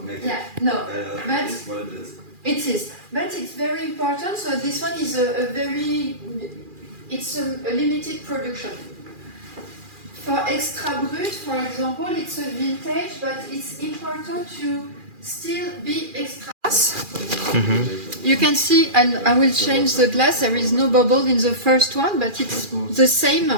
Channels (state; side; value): late; left; 2.4 ms